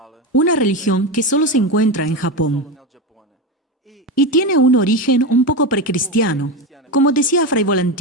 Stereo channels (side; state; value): both; normal; correlation 0.16